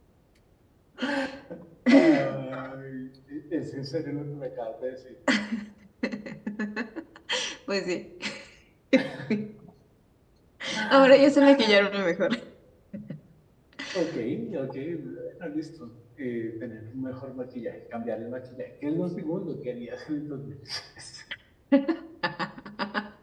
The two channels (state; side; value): identical; both; correlation 1.00